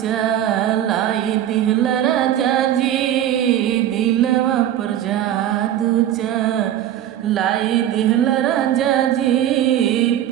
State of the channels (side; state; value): left; quieter; 11.4 dB